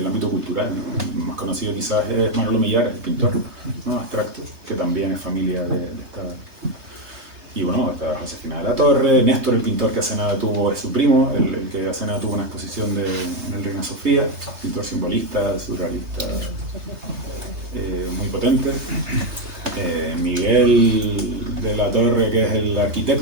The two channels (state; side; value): late; left; 3.3 ms